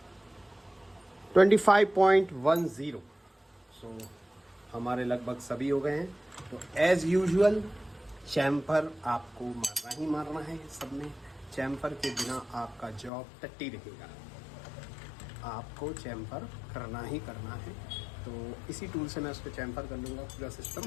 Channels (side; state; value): right; drops out; at 13.1 s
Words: $25.10। सो हमारे लगभग सभी हो गए हैं। तो एज़ यूजुअल चैम्फर आपको मारना ही मारना है। सब में चैम्फर के बिना आपका जॉब टट्टी रहेगा, आपको चैम्फर करना ही करना है। तो इसी टूल से मैं उसको चैम्फर कर लूँगा पूरा सिस्टम।